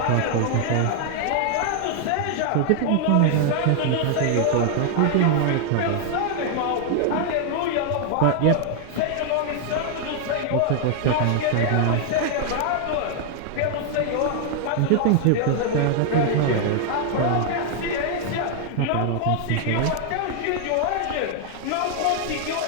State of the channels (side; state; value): both; different; correlation 0.00